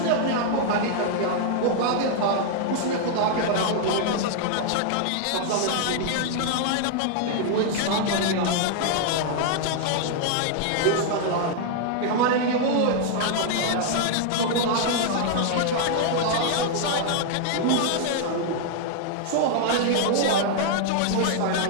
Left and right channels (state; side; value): different; both; correlation 0.00